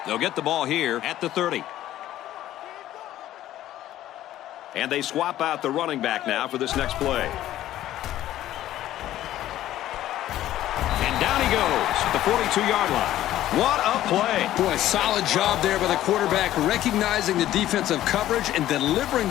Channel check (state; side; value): quieter; right; 13.5 dB